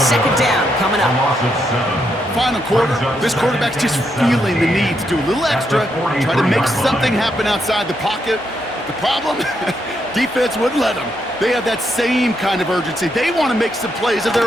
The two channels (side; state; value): both; normal; correlation 0.79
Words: down coming up. Final quarter, this quarterback's just feeling the need to do a little extra, try to make something happen outside the pocket. The problem? Defense wouldn't let them. They have that same kind of urgency. They want to make some plays of